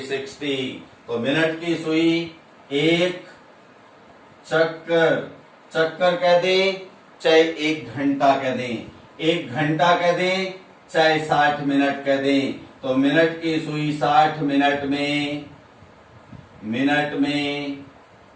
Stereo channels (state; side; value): identical; both; correlation 1.00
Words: तो मिनट की सुई एक चक्कर, चक्कर कह दें चाहे एक घंटा कह दें, एक घंटा कह दें चाहे 60 मिनट कह दें, तो मिनट की सुई 60 मिनट में